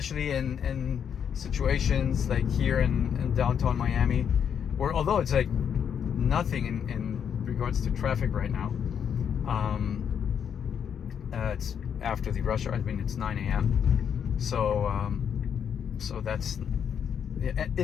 in situations like here in downtown Miami, where although it's like nothing in regards to traffic right now, it's after the rush hour. I mean, it's 9 a.m. So so that's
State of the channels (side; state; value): right; quieter; 8.0 dB